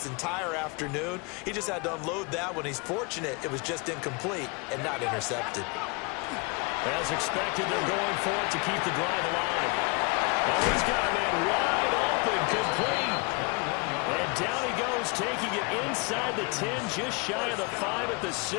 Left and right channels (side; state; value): right; quieter; 29.3 dB